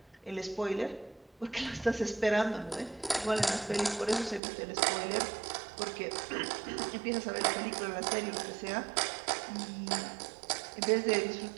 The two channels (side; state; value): left; drops out; at 4.4 s